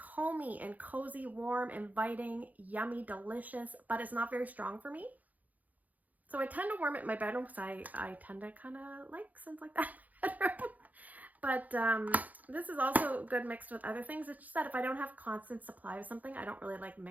and cozy, warm, inviting, yummy, delicious, but it's not very strong for me. So I tend to warm it in my bedroom because I tend to kind of like scents like that in my bedroom. But this is also good mixed with other things. It's just that if I don't have constant supply of something, I don't really like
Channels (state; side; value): late; left; 0.079 ms